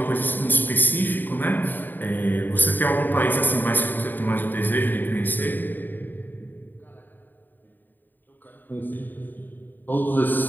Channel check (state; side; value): late; right; 0.090 ms